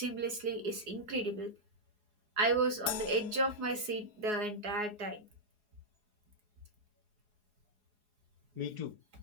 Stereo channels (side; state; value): left; late; 4.8 ms